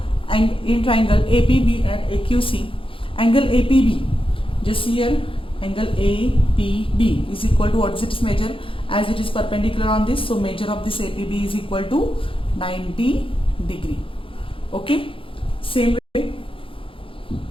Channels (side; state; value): right; late; 0.26 ms